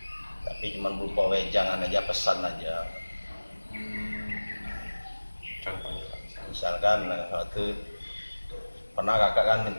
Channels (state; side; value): inverted; both; correlation -1.00